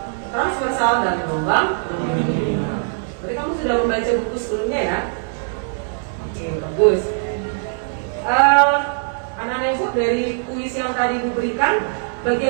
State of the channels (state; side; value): silent; left; digital silence